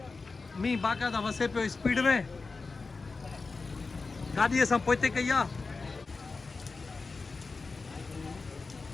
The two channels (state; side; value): quieter; right; 4.1 dB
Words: मींहुं बाक़ाइदा वसे पियो स्पीड में गाॾी असां पोइते कई आहे